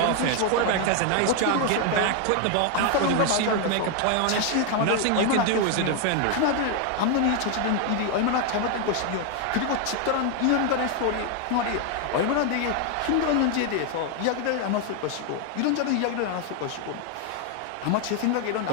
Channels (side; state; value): both; different; correlation 0.01